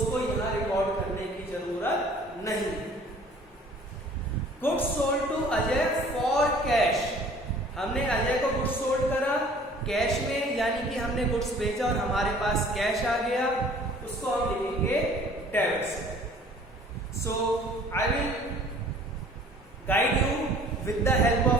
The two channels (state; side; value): normal; both; correlation 0.51